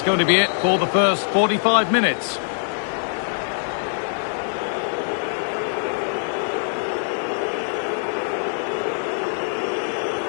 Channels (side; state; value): right; silent; 64 dB below the other